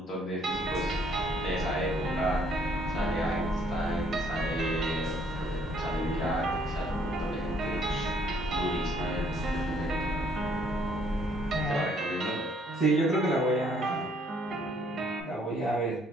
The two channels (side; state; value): both; normal; correlation 0.64